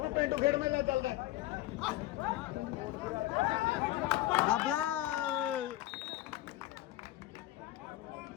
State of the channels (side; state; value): right; quieter; 16.0 dB